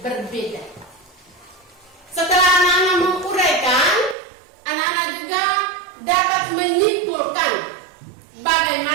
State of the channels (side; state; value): left; drops out; at 4.2 s